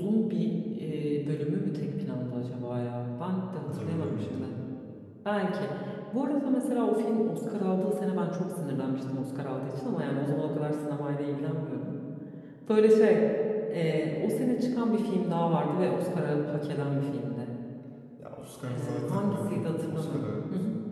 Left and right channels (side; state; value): both; identical; correlation 1.00